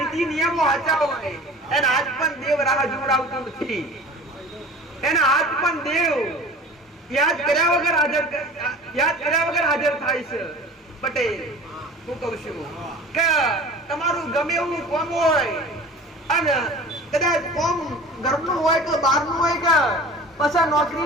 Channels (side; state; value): both; normal; correlation 0.40